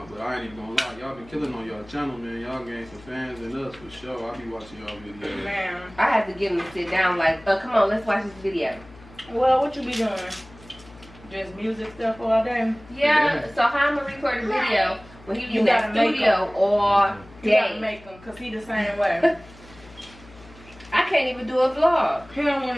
but I ain't even gonna lie. Y'all been killing on y'all channel, man. Y'all gained some fans in us for sure. I be watching y'all videos. Man. I have to get him to sit down like, oh, come on, let's watch this video. Well, what you be doing? Just music stuff all day? Yeah, so how I'm going to record a video when he be You in that gotta make studio all You gotta day? make them, because he the same way. I can't even do a vlog. He don't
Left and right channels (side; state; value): left; noise; hum, 22 dB below the sound